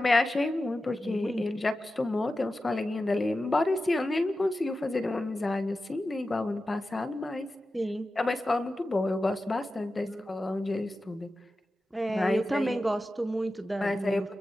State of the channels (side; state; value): both; normal; correlation 0.93